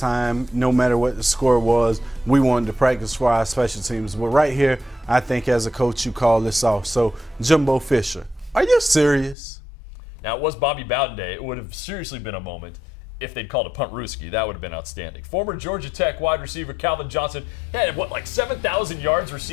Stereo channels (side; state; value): right; drops out; at 9.3 s